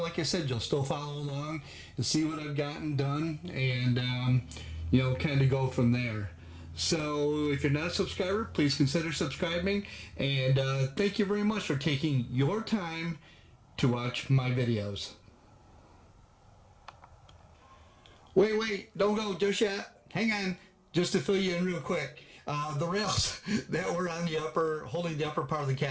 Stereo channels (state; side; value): identical; both; correlation 1.00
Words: I said, you'll still follow along and see what I've gotten done, and you know, kind of go from there. So if you're not a subscriber, please consider subscribing, and thank you very much for taking your time to watch my videos. Wait, don't go just yet. Hang on, just to fill you in real quick. The rails that were on the upper, holding the upper part of the